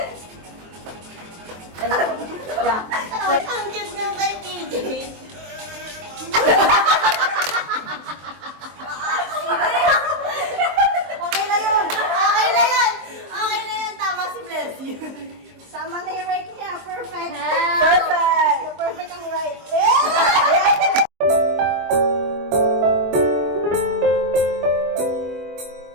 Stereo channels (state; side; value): late; left; 23 ms